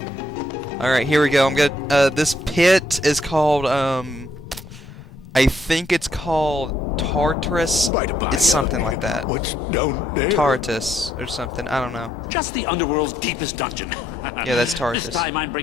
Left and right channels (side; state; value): both; normal; correlation 0.73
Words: Alright, here we go. I'm gonna this pit is called I think it's called Tartarus. It's something like that. What's down there? Tartarus or something. I don't know. Just the Underworld's deepest dungeon. Yeah, that's Tartarus. This time I'm